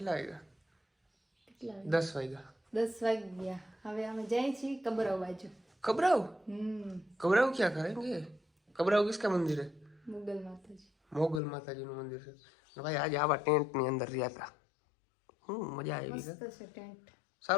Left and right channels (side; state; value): right; drops out; at 11.4 s